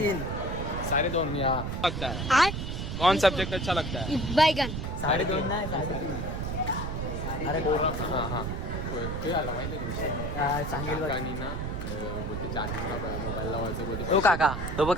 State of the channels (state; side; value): noise; right; rumble, 4 dB below the sound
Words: 2:30 या लगता है. कौन सब्जेक्ट अच्छा लगता है? बैगन. 2:30 नाही 3:30. अरे हाँ ते आला माहिती आहे सांगेल बघ. काकानी ना बोलते चार्जिंगला मोबाईल लावायचं बोलते. तो काका तो बघ